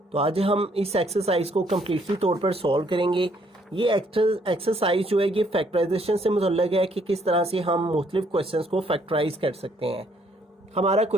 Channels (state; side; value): normal; both; correlation 0.67